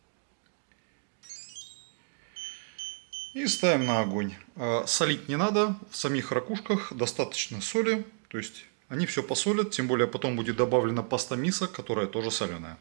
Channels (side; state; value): left; silent; 57 dB below the other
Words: И ставим на огонь. Солить не надо. В самих ракушках достаточно соли. То есть они все посолят. Тем более потом будет добавлена паста мисо, которая тоже соленая.